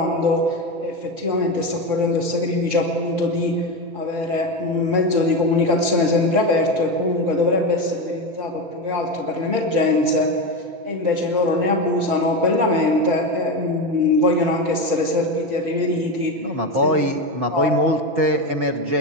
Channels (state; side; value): late; left; 5.2 ms